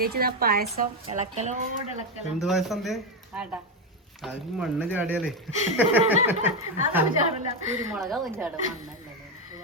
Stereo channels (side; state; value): both; normal; correlation 0.08